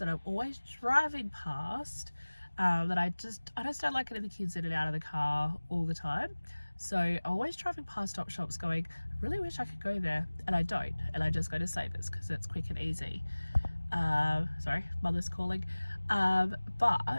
I'm always driving past. That I just don't like getting the kids in and out of the car all the time. So I'm always driving past op shops going, I really wish I could go there, and I don't, and I just go to Savers because it's quick and easy. Sorry, mother's calling.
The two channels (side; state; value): both; inverted; correlation -1.00